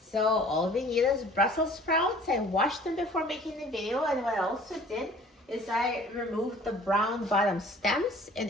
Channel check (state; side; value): normal; both; correlation 0.50